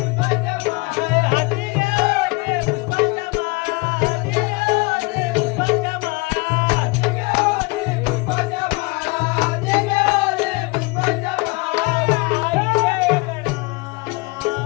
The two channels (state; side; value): quieter; right; 26.3 dB